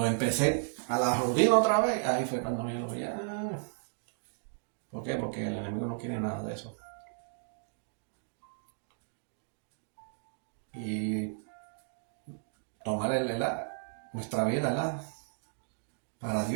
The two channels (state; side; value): silent; left; digital silence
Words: empecé a la rutina otra vez, ahí fue cuando yo lo vi. ¿Por qué? Porque el enemigo no quiere nada de eso. Y tomar nuestra vida, ¿verdad? Para